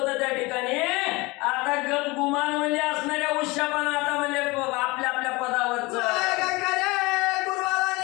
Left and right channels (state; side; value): quieter; right; 23.6 dB